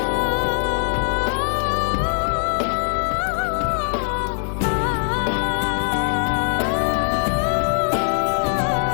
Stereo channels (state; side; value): silent; right; digital silence